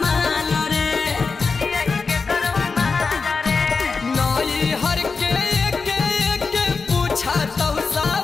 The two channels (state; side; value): quieter; right; 4.6 dB